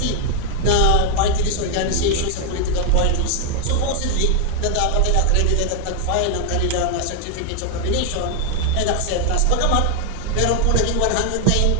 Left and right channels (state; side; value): different; both; correlation 0.00